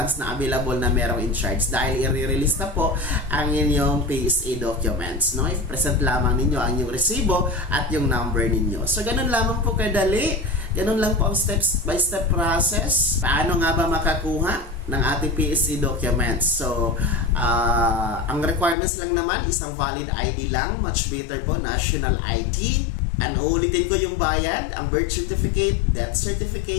na available na merong in charge, dahil i-release na po ang inyong PSA documents, no? I-present lamang ninyo ang inyong resibo at yung number ninyo. So ganun lamang po kadali, ganun lang po ang steps by step process. Paano nga ba makakuha ng ating PSA documents? So ang requirements lang naman, isang valid ID lang, much better po national ID. And ulitin ko yung bayad, ang birth certificate, death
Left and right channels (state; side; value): drops out; right; at 18.8 s